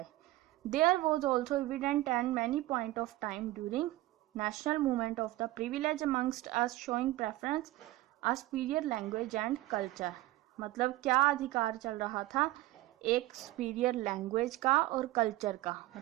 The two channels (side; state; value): left; quieter; 17.5 dB